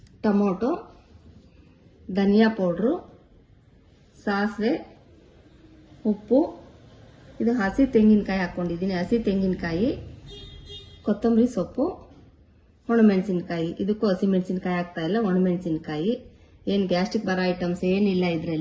ಟೊಮೊಟೊ, ಧನಿಯಾ ಪೌಡ್ರು, ಸಾಸಿವೆ, ಉಪ್ಪು, ಇದು ಹಸಿ ತೆಂಗಿನಕಾಯಿ ಹಾಕ್ಕೊಂಡಿದ್ದೀನಿ, ಹಸಿ ತೆಂಗಿನಕಾಯಿ, ಕೊತ್ತಂಬರಿ ಸೊಪ್ಪು, ಒಣಮೆಣಸಿನ್ಕಾಯಿ. ಇದಕ್ಕೂ ಹಸಿ ಮೆಣಸಿನ್ಕಾಯಿ ಹಾಕ್ತಾ ಇಲ್ಲ, ಒಣಮೆಣಸಿನ್ಕಾಯಿ. ಏನು ಗ್ಯಾಸ್ಟ್ರಿಕ್ ಬರೋ ಐಟಮ್ಸ್ ಏನಿಲ್ಲ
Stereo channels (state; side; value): identical; both; correlation 1.00